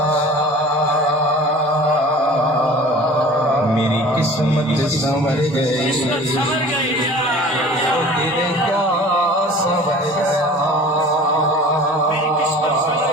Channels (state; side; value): normal; both; correlation 0.43